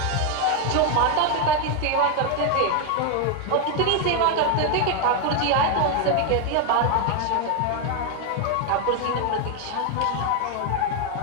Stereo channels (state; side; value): different; both; correlation 0.01